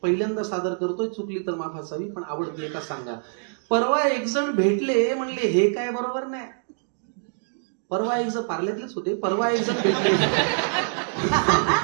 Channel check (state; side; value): silent; left; digital silence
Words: पहिल्यांदा सादर करतोय, चुकली तर माफ असावी, पण आवडते का सांगा. परवा एक जण भेटले, म्हणले हे काय बरोबर नाही. परवा एक जण पार्ल्यातलेच होते. परवा एक